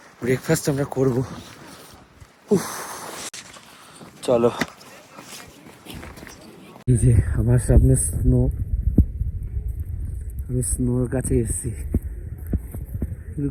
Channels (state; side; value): identical; both; correlation 1.00